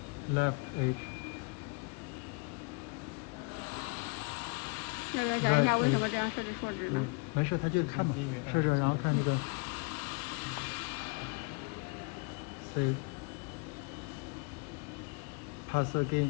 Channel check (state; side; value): quieter; right; 31.4 dB